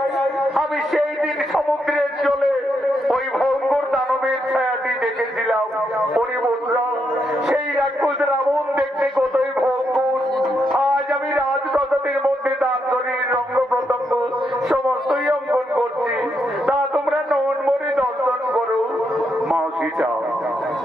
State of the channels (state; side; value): normal; both; correlation 0.80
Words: আমি সেই দিন সমুদ্রের জলে ওই ভয়ঙ্কর দানবের ছায়াটি দেখেছিলাম। ওরে বন্ধুরা, সেই রাক্ষস রাবণ দেখতে কতই ভয়ঙ্কর। আজ আমি রাজপ্রাসাদের মধ্যে তার শরীর রঙ্গ প্রত্যঙ্গ সমস্তই অঙ্কন করছি, তা তোমরা নন মনে দর্শন করো। মা সীতা,